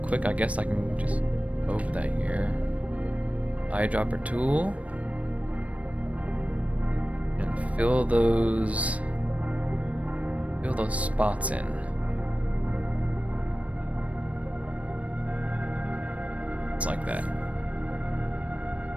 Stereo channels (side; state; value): left; late; 0.066 ms